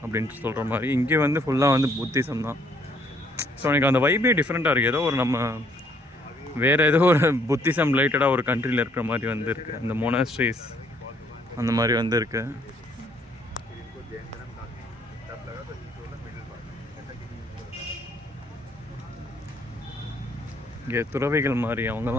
அப்படின்ட்டு சொல்கிற மாதிரி, இங்கே வந்து ஃபுல்லாக வந்து புத்திசம் தான். ஸோ எனக்கு அந்த வைபே டிஃப்ரெண்ட்டாக இருக்குது. ஏதோ ஒரு நம்ம வேறு ஏதோ ஒரு புத்திசம் ரிலேட்டடாக ஒரு கண்ட்ரியில் இருக்கிற மாதிரி வந்து இருக்குது. அந்த மொனாஸ்ட்ரீஸ் அந்த மாதிரி வந்து இருக்குது. இங்கே துறவிகள் மாதிரி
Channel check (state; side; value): normal; both; correlation 0.65